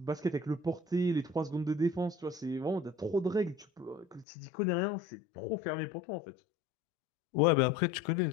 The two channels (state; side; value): drops out; right; at 4.2 s